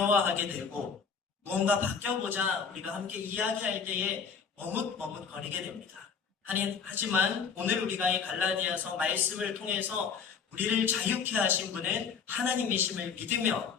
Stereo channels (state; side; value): quieter; right; 6.2 dB